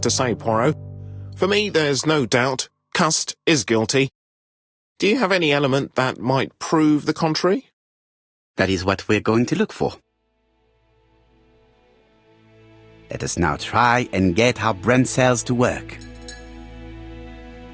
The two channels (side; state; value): both; identical; correlation 1.00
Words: to say, Poirot. For me, there's no doubt Cust is guilty. Do you have any element that might prove the contrary? That is what we're going to look for. Let us now try and get our brain cells to work.